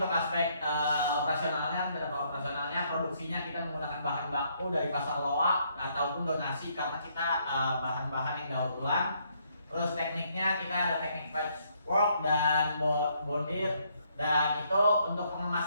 aspek operasionalnya produksinya kita menggunakan bahan baku dari pasar loak ataupun donasi karena kita bahan-bahan yang daur ulang. Terus tekniknya kita ada teknik patchwork dan bondir, dan itu untuk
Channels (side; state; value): both; inverted; correlation -0.71